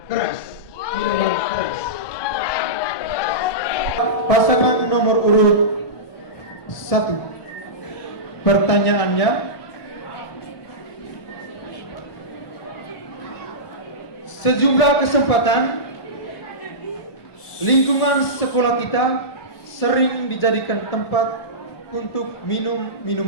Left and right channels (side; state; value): right; late; 1.2 ms